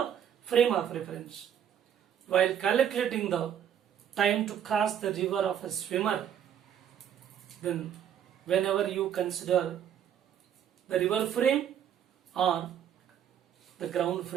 frame of reference. While calculating the time to cross the river of a swimmer, then whenever you consider the river frame or the ground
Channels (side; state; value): left; quieter; 9.3 dB